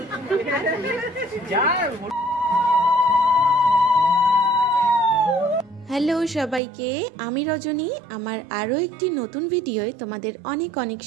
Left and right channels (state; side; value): drops out; left; at 6.6 s